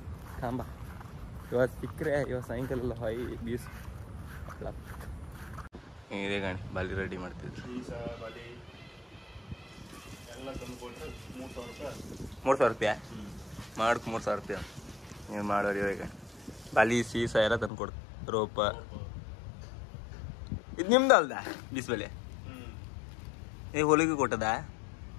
ಕಾಂಬ. ಇವತ್ತು ಸಿಕ್ಕರೆ ಇವತ್ತು ಸಾಯಂಕಾಲ ಎಲ್ಲ ಹೊಯ್ ಬೀಸ್ ಇದೆ ಗಾಣಿ ಬಾಲಿ ರೆಡಿ ಮಾಡ್ತಿದ್ರು. 3,000 ರೂಪಾಯಿ ಮಾಡಕ್ಕೆ 3,000 ರೂಪಾಯಿ ನೀವು ಮಾಡೋರು. ಇವಾಗ ಬಾಲಿ ಸೀಸ ಎಲ್ಲ ತಂದು ಕೊಡ್ತು. ರೋಪ ಇದು ನಿಮ್ದು ಅಲ್ದ ಬೀಸ್ಬಲೆ ಈಗ ಹೊಲಿಗೆ ಕೊಟ್ಟದ.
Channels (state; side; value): drops out; right; at 17.7 s